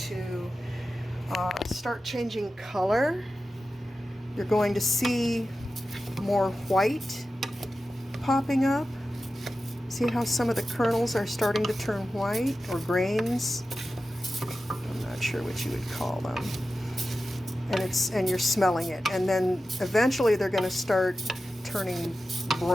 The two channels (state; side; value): normal; both; correlation 0.93